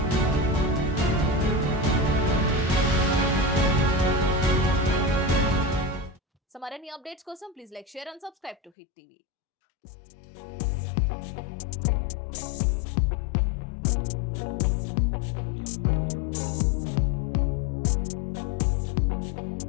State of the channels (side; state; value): right; drops out; at 8.7 s